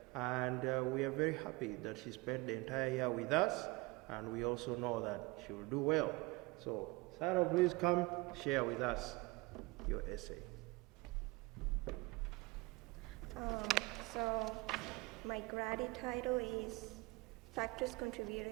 And we are very happy that she spent the entire year with us, and we also know that she will do well. So, Sarah, please come share with us your essay. So, my grade title is Factors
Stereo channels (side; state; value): left; quieter; 24.1 dB